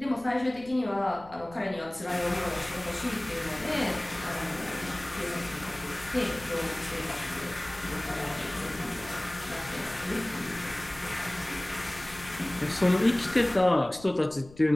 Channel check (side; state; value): left; noise; rumble, 20 dB below the sound